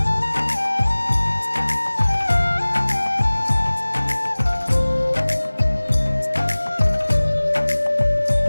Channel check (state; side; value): inverted; both; correlation -1.00